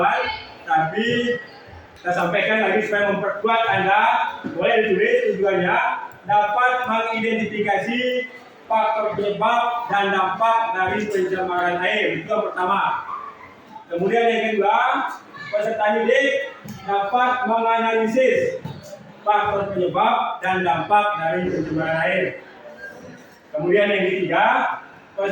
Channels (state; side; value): identical; both; correlation 1.00